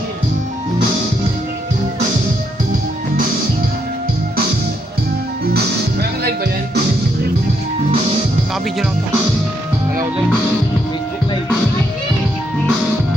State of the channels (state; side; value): normal; both; correlation 0.76